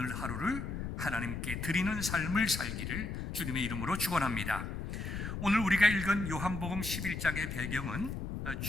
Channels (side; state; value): left; noise; rumble, 5 dB below the sound